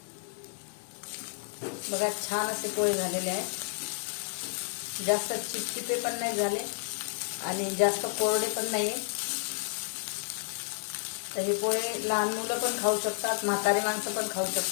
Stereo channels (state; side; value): silent; right; digital silence